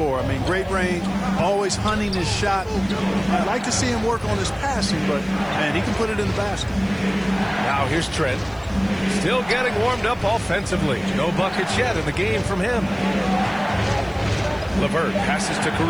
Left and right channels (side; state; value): right; noise; hiss, 30 dB below the sound